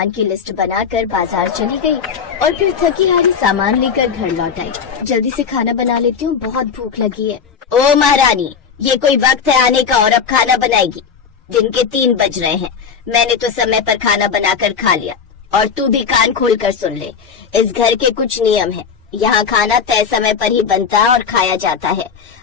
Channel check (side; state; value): right; quieter; 6.5 dB